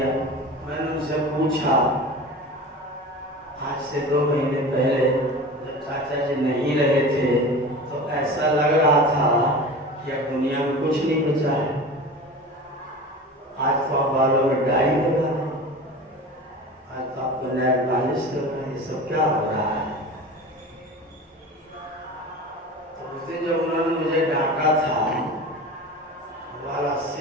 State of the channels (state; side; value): normal; both; correlation 0.33